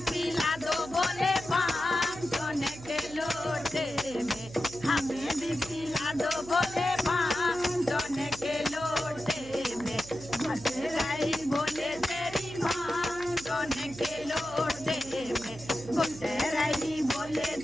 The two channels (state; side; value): noise; right; hum, 16 dB below the sound